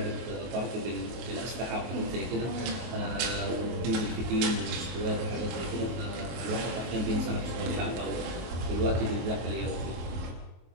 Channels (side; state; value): left; late; 23 ms